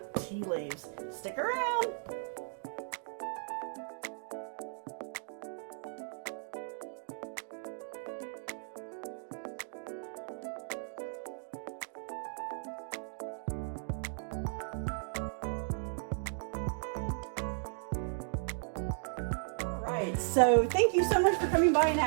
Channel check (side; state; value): left; silent; 54 dB below the other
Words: TeaLeaves. Stick around. Right, so thank you so much for coming by and